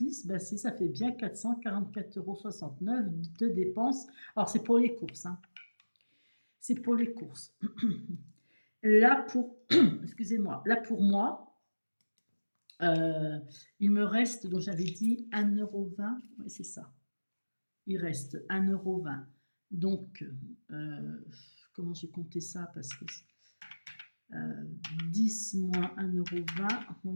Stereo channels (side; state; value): both; inverted; correlation -1.00